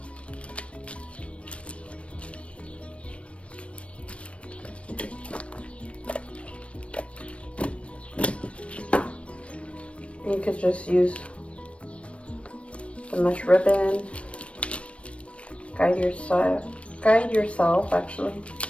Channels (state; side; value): late; right; 0.061 ms